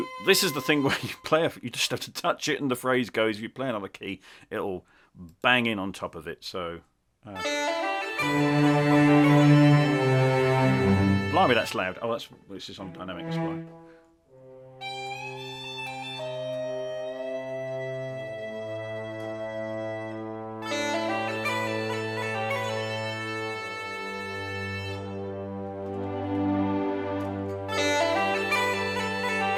this is the thing where you play, you just have to touch it and the phrase goes. If you play another key, it'll bang in on top of it. So, blimey, that's loud. Oh, this is on dynamic display.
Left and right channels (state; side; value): identical; both; correlation 1.00